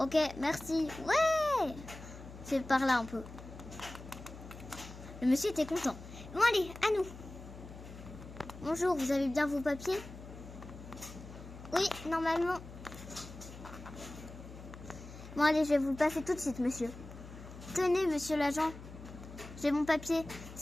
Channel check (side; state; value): left; noise; hum, 14 dB below the sound